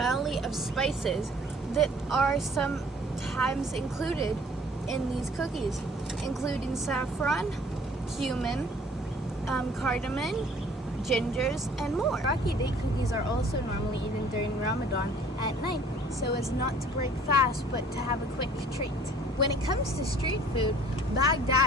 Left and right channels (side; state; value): both; normal; correlation 0.53